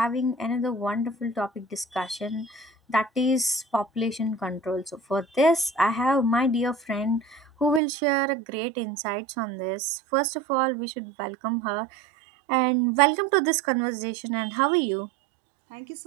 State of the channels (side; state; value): left; drops out; at 7.8 s